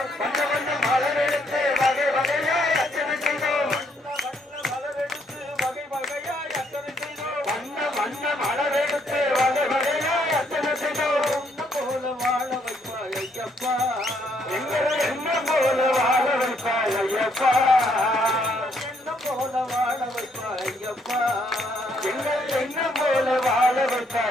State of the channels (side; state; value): both; normal; correlation 0.71